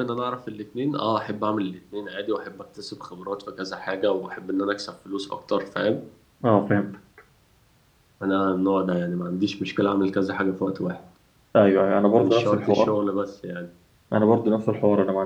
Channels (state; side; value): identical; both; correlation 1.00